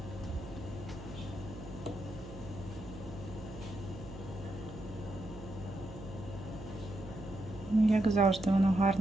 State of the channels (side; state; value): right; noise; hum, 13 dB below the sound